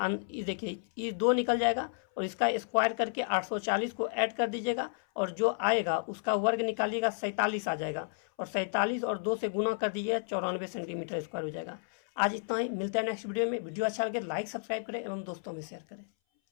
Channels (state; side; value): silent; right; 57 dB below the other